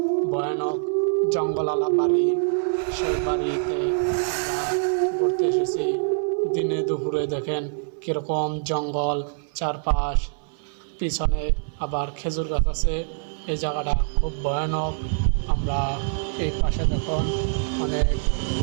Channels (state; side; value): silent; left; 62 dB below the other